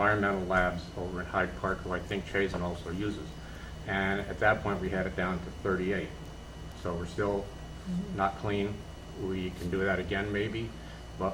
Labs over in Hyde Park, who I think Chazen also uses. And at that point, we had it down to 38. So we're still not clean. We can do that again, maybe,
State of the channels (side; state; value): both; identical; correlation 1.00